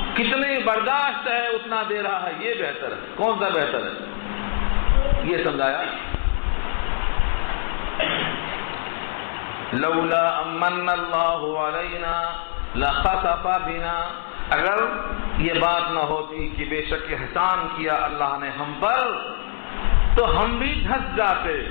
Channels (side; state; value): right; silent; 63 dB below the other